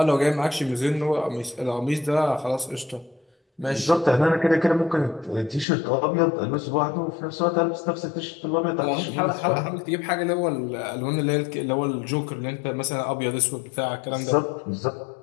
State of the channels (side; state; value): right; drops out; at 5.7 s